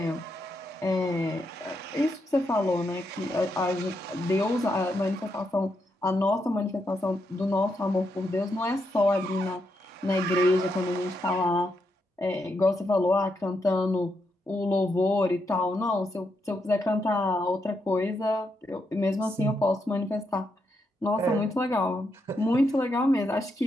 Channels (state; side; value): normal; both; correlation 0.81